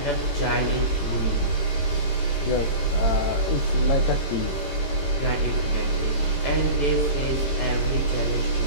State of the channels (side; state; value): right; late; 18 ms